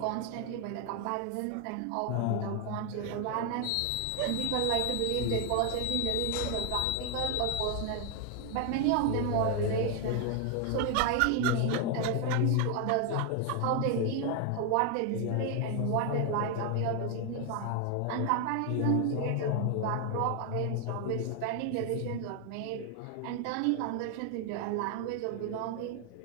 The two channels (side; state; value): both; different; correlation 0.00